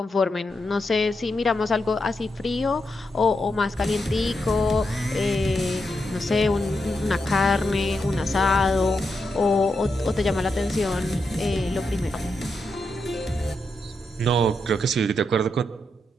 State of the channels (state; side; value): normal; both; correlation 0.84